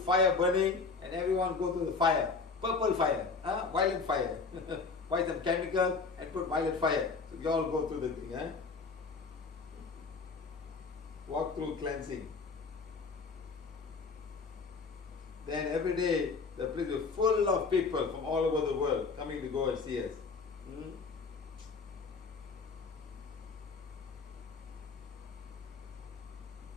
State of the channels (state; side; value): quieter; right; 4.6 dB